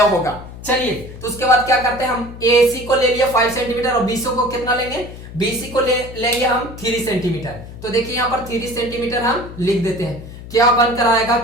होगा। चलिए तो उसके बाद क्या करते हैं, हम एसी को ले लिया 5 सेंटीमीटर और बीसी को कितना लेंगे, बीसी को लेंगे हम 3 सेंटीमीटर। तो देखिए यहाँ पर 3 सेंटीमीटर हम लिख देते हैं। क्या बनकर आएगा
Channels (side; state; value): left; noise; hum, 14 dB below the sound